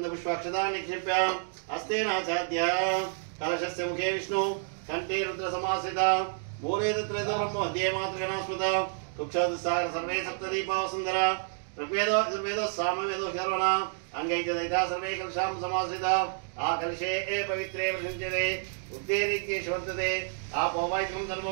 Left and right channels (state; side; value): silent; left; digital silence